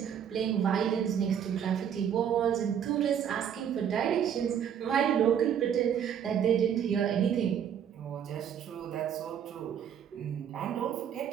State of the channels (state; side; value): quieter; left; 8.7 dB